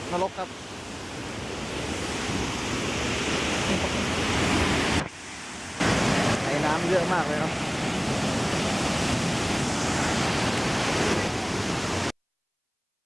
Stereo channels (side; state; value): both; identical; correlation 1.00